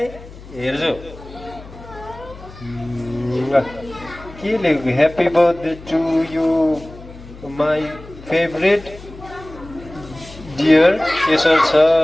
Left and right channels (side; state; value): left; noise; hum, 18 dB below the sound